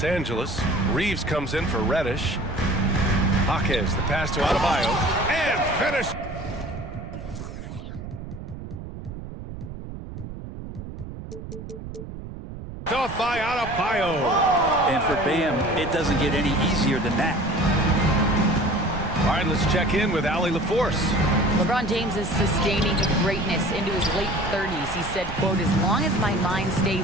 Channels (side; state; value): right; noise; rumble, 10 dB below the sound